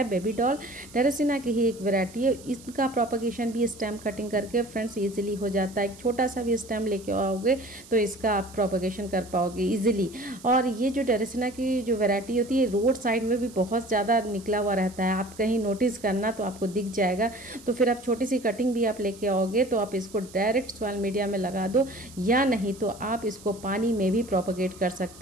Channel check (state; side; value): noise; right; hiss, 21 dB below the sound